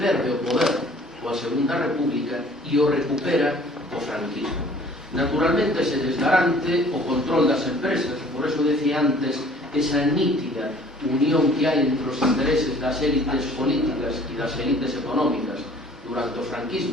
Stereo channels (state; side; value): normal; both; correlation 0.53